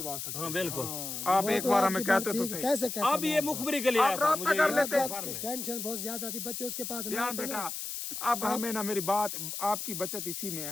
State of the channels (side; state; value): left; noise; hiss, 5 dB below the sound